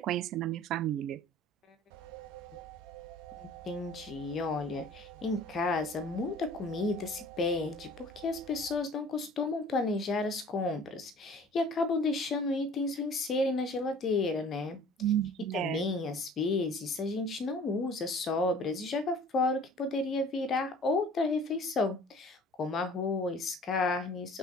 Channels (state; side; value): normal; both; correlation 0.48